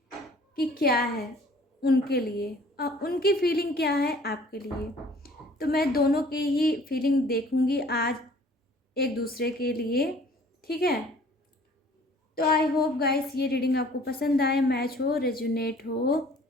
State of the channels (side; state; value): both; normal; correlation 0.53